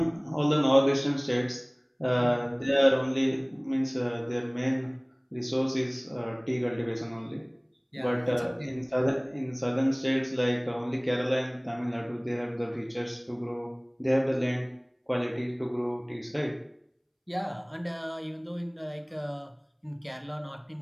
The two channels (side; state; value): both; identical; correlation 1.00